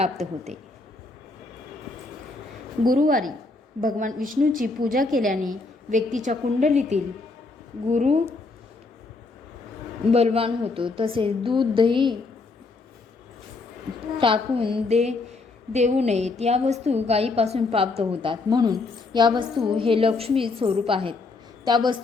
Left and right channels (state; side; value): quieter; right; 3.7 dB